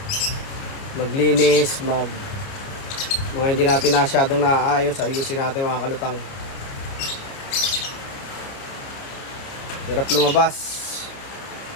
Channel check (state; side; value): late; right; 29 ms